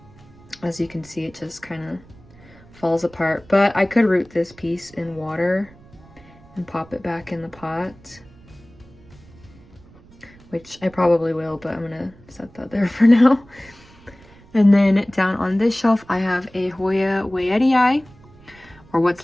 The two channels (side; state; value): right; noise; rumble, 25 dB below the sound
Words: As you can see, it just kind of falls apart. But I could root this piece in water and pop it back in the pot, which I probably will, but I'm gonna set that there for now. And then down on this shelf, I have a Hoya Wayetii, or